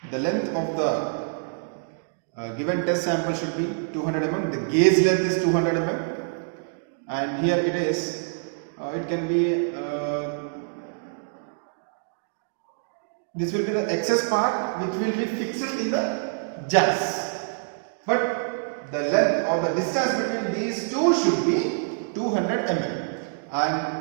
The length of the given test sample should be 200 mm. The gauge length is 200 mm, and here it is. It can be. This will be the excess part which will be fixed in the jacks. But the length or the distance between these two should be 200 mm, and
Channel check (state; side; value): silent; left; digital silence